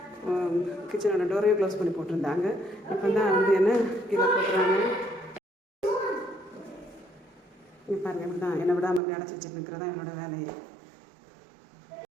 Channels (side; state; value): left; drops out; at 9.0 s